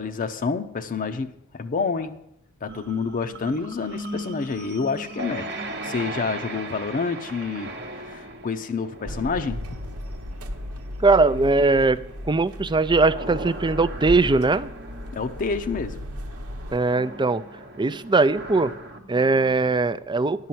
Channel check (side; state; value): both; normal; correlation 0.46